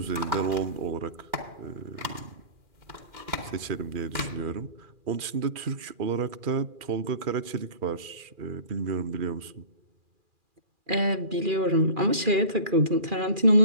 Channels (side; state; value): left; late; 2.4 ms